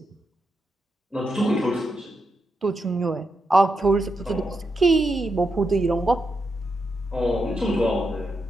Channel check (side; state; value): both; normal; correlation 0.84